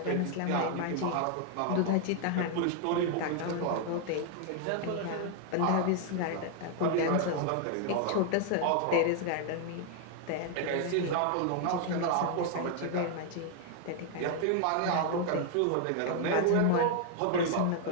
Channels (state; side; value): different; both; correlation 0.00